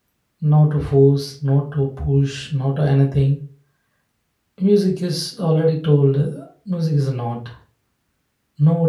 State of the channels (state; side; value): identical; both; correlation 1.00